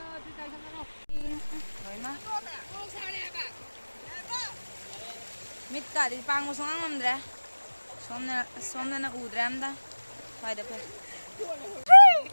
Mit ka di pang mo songang mamdra. Somna na udram da. Fayda pe.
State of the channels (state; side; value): inverted; both; correlation -1.00